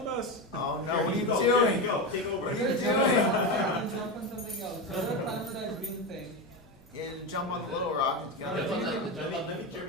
us! Oh no, Here, what are you go, here doing? Go. Take over. What are you Good doing? job. Jump on something else. So don't climb for that green thing. And jump on the little rock and get on Jump on the that. Let me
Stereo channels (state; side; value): normal; both; correlation 0.16